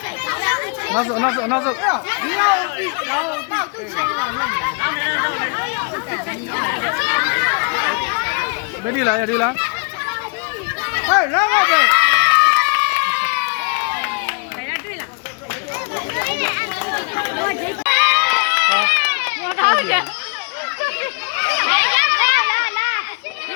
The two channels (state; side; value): quieter; right; 38.5 dB